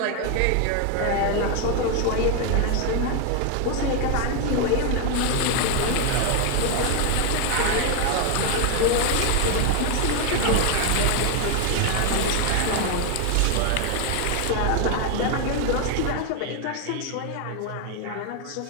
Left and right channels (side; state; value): both; different; correlation 0.01